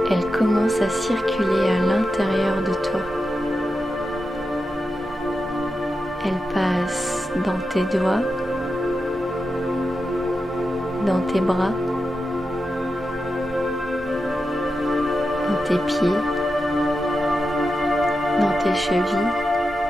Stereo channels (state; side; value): normal; both; correlation 0.90